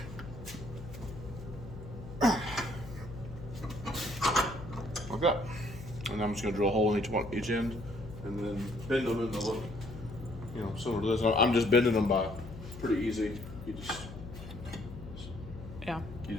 Okay. And I'm just going to drill a hole in each end and then bend them in the look, similar to this. I'm just bending them by pretty easy. Yeah. You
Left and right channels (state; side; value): noise; left; hum, 12 dB below the sound